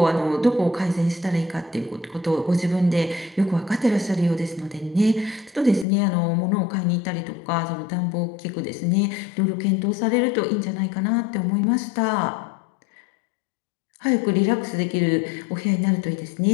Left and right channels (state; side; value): drops out; right; at 5.9 s